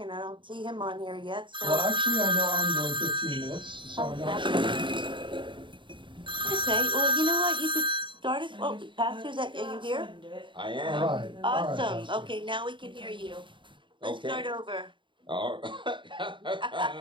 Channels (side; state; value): left; late; 0.24 ms